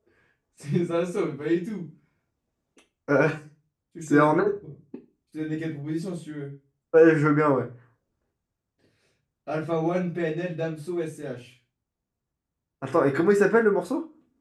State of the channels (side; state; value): both; identical; correlation 1.00